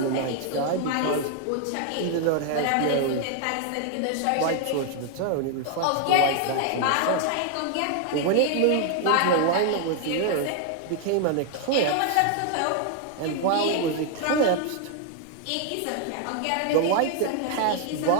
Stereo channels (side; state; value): both; different; correlation 0.00